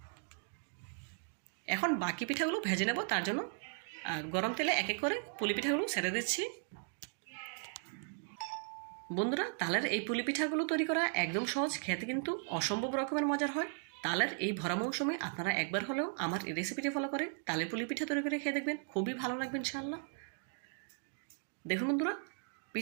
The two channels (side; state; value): left; silent; 53 dB below the other